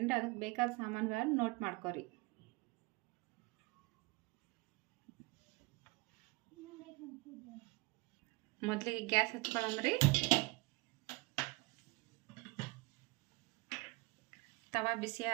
ಅದಕ್ಕೆ ಬೇಕಾದ ಸಾಮಾನುಗಳನ್ನು ನೋಟ್ ಮಾಡ್ಕೊರಿ. ಮೊದಲಿಗೆ ಗ್ಯಾಸ್ ಹಚ್ಕೊಳ್ಳೋಮ್ರಿ. ತವಾ ಬಿಸಿ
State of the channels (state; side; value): quieter; left; 25.7 dB